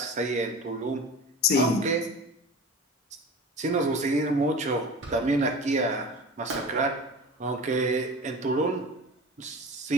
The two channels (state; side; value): normal; both; correlation 0.35